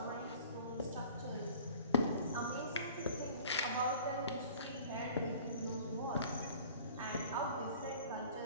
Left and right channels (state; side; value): inverted; both; correlation -0.47